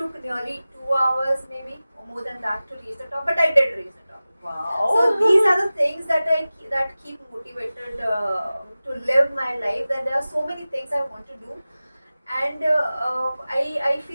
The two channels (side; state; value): both; inverted; correlation -0.97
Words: nearly 2 hours maybe, or more than that to reach the top. But I did reach the top. Wow. So these are the things that that keep motivated to live my life. That there are so many things I want to do. And I